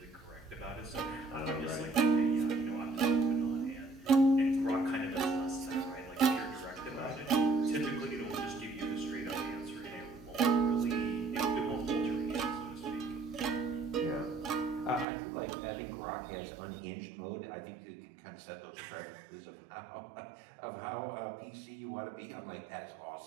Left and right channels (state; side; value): drops out; left; at 15.1 s